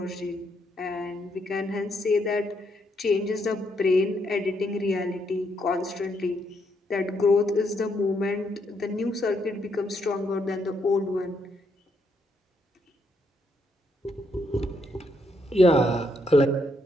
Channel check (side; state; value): both; normal; correlation 0.75